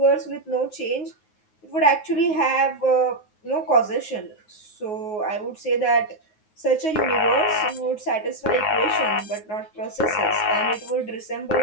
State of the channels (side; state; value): right; late; 9.5 ms